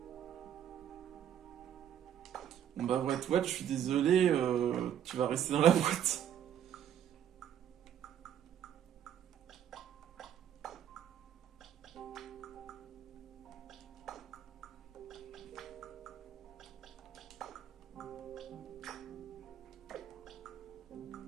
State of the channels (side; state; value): left; quieter; 9.8 dB